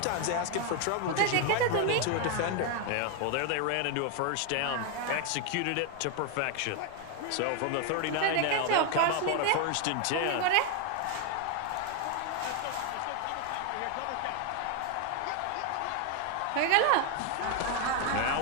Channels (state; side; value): different; both; correlation 0.01